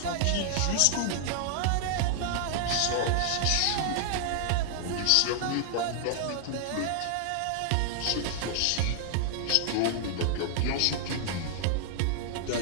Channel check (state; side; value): different; both; correlation -0.01